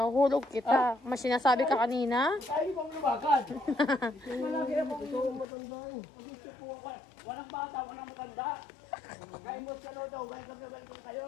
hulog kita. Mas sinasabi ka kanina. Ay, ibang lumakan. Walang bata, walang matanda. Kaya mo siya daw, kaya kami balik kayo.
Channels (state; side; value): drops out; right; at 5.5 s